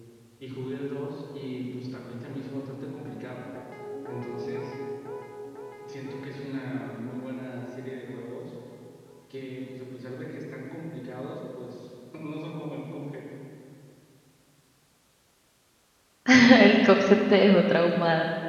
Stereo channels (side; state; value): both; identical; correlation 1.00